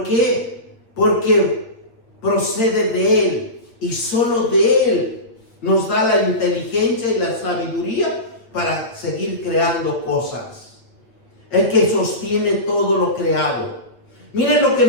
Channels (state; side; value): late; right; 8.5 ms